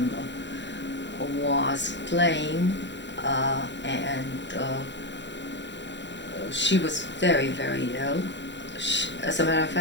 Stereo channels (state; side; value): late; right; 0.52 ms